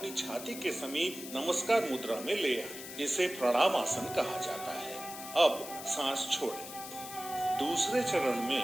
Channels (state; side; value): noise; left; hiss, 11 dB below the sound